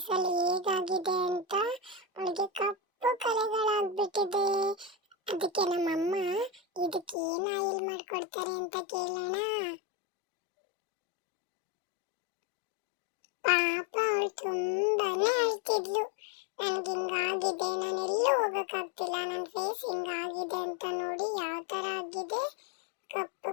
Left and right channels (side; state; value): right; drops out; at 7.2 s